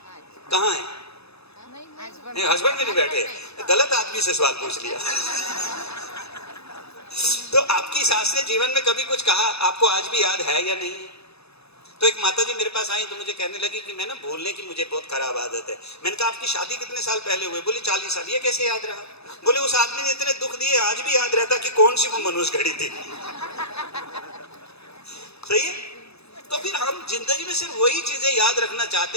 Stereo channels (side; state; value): right; late; 0.79 ms